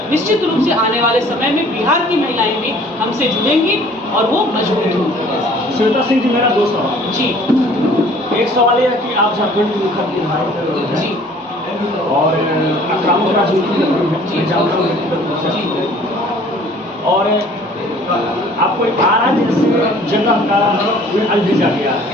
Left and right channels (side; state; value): both; normal; correlation 0.53